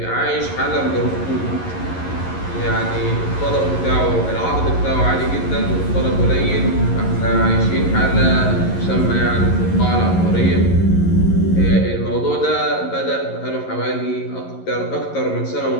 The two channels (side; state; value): right; late; 11 ms